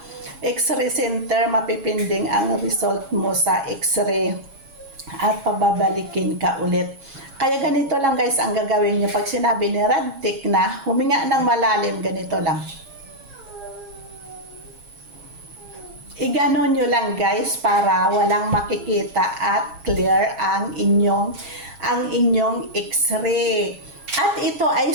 x-ray center, mapipinding ang result mo sa x-ray at pababalikin ka ulit. Kaya ganito lang guys ang gagawin nyo pag sinabi ni radtech na huminga ng malalim, ganito lang. Iganon nyo lang guys para walang makikita at clear ang inyong x-ray. At ito ay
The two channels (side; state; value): left; late; 7.3 ms